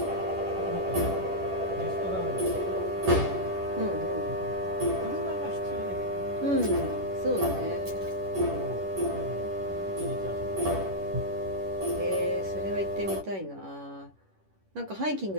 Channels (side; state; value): left; late; 10 ms